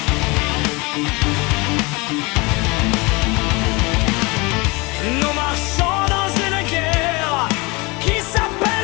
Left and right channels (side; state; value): right; quieter; 26.1 dB